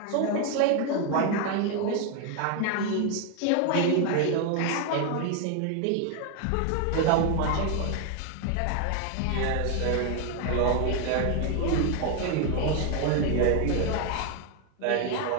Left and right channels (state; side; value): different; both; correlation 0.01